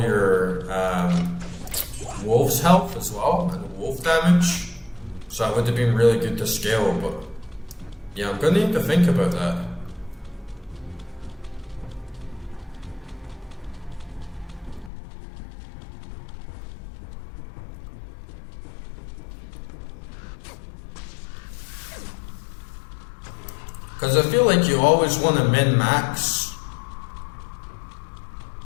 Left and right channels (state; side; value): drops out; right; at 14.9 s